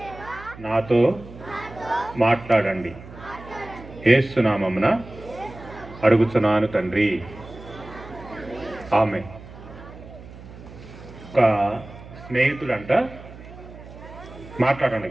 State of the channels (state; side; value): noise; right; hum, 17 dB below the sound